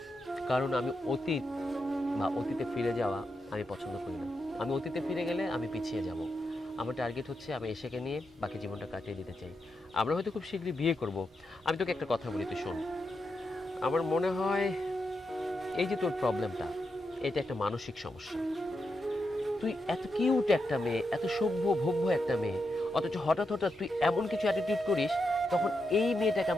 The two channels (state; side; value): normal; both; correlation 0.85